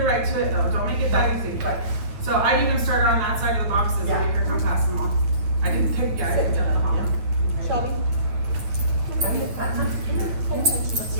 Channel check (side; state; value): left; late; 8.8 ms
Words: right to it though. Don't make it that easy. But so I even started on that side of the boxes and make her come past them all. I didn't pick. Yeah, I picked up the hot one. Shelby? Let's